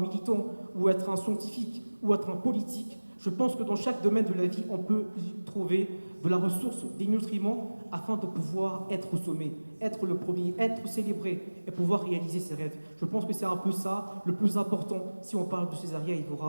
ou être un scientifique ou être un politique. Je pense que dans chaque domaine de la vie, on peut y trouver de la ressource, des nutriments, afin de pouvoir être au sommet, être le premier, être célébré et pouvoir réaliser ses rêves. Je pense que c'est un peu ça le plus important si on parle de Césaria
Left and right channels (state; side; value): inverted; both; correlation -1.00